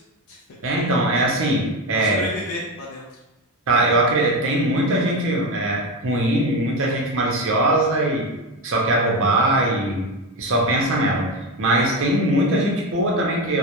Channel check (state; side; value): normal; both; correlation 0.17